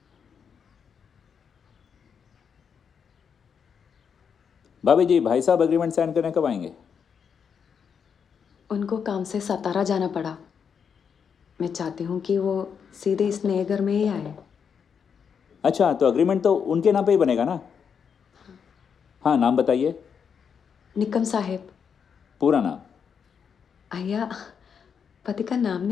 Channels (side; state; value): right; quieter; 6.9 dB